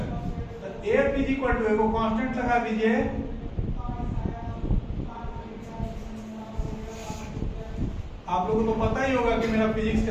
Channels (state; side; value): identical; both; correlation 1.00